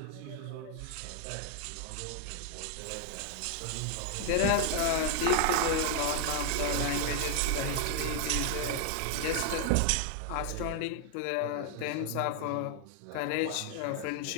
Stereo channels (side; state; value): both; different; correlation 0.00